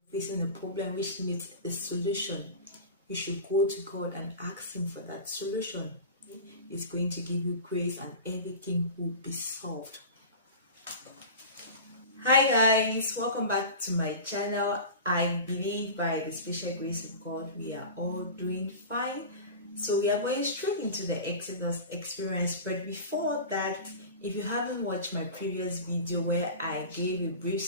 facing a problem which needs a solution, you should go to God and ask Him for that solution. He's going to give you grace and everything will be solved. Hi guys, welcome back to my channel. I believe by the special grace of God we are all doing fine. So we are going straight into the Exodus experience, but before that, if you haven't watched my previous video where I gave a brief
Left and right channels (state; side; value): inverted; both; correlation -0.33